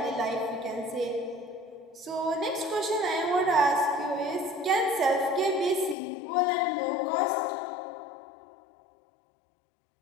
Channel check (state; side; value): drops out; right; at 6.0 s